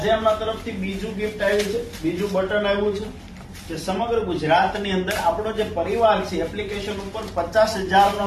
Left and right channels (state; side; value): identical; both; correlation 1.00